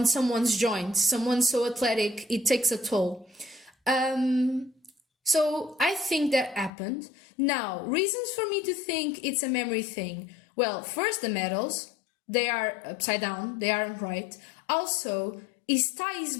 someone's joints. Someone so athletic, it takes a toll. So I think that happened. Now, reasons for me to think it's a memory thing. Well, first, the medals, they are upside down, they aren't right. Also, his tie is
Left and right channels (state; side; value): drops out; right; at 6.7 s